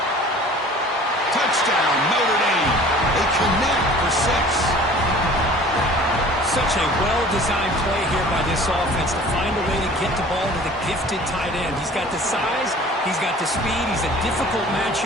Touchdown, Notre Dame. They connect for 6. Such a well-designed play here by this offense to find a way to get the ball to the gifted tight end. He's got the size, he's got the speed, he's a difficult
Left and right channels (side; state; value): both; normal; correlation 0.47